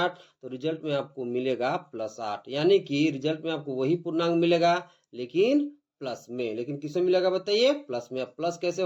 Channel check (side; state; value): both; identical; correlation 1.00